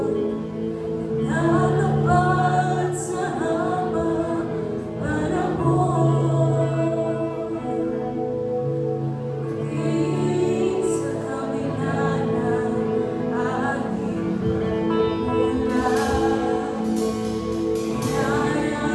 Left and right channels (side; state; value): both; identical; correlation 1.00